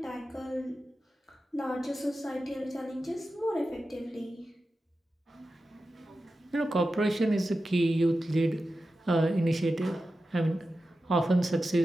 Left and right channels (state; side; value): normal; both; correlation 0.92